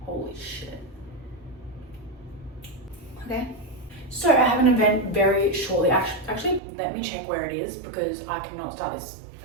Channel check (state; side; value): drops out; left; at 6.6 s